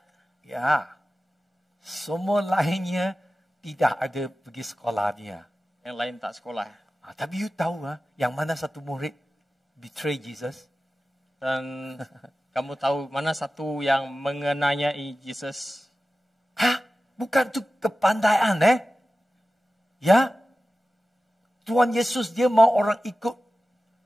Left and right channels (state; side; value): normal; both; correlation 0.95